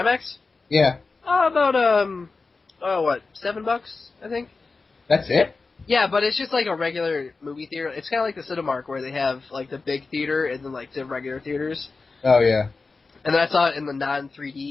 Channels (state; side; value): quieter; right; 4.1 dB